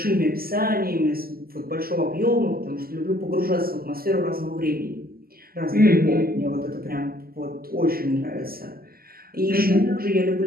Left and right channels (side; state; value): left; late; 0.43 ms